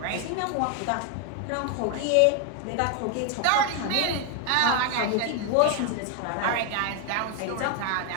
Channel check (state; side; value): different; both; correlation 0.01